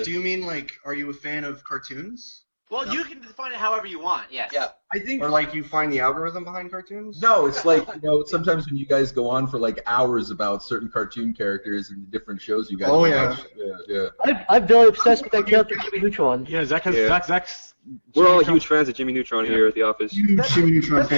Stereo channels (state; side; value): inverted; both; correlation -1.00